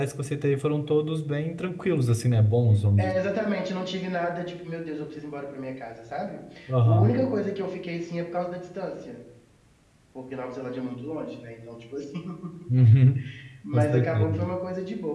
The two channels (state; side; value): identical; both; correlation 1.00